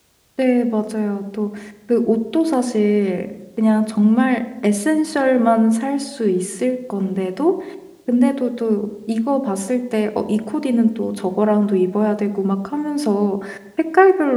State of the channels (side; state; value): both; identical; correlation 1.00